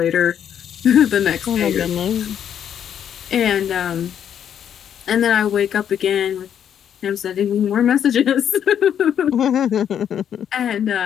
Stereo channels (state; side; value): quieter; right; 9.1 dB